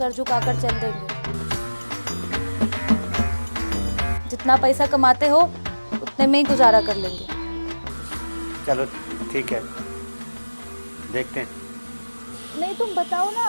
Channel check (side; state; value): both; inverted; correlation -1.00